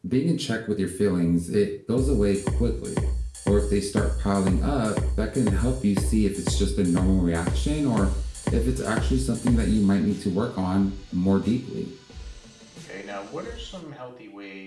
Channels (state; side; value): identical; both; correlation 1.00